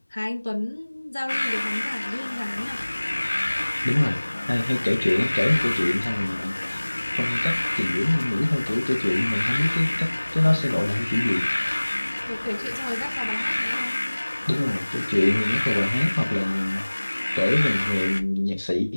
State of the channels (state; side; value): inverted; both; correlation -1.00